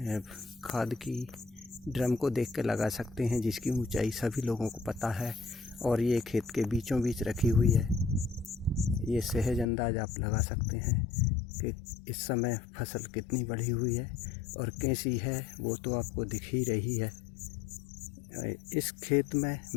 खाद की ड्रम को देख के लगा सकते हैं, जिसकी ऊंचाई सभी लोगों को पता है और ये खेत के बीचों बीच रखी हुई है। ये सहज अंदाज आप लगा सकते हैं कि इस समय फसल कितनी बढ़ी हुई है और कैसी है, वो तो आपको दिख ही रही है। इस खेत में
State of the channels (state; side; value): drops out; right; at 9.7 s